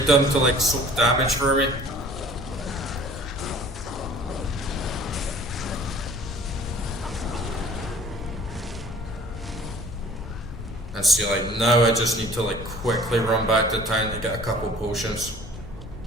them to like soak damage for me. And see, like, now I just need to like quickly run back to town to get a couple potions.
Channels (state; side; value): normal; both; correlation 0.49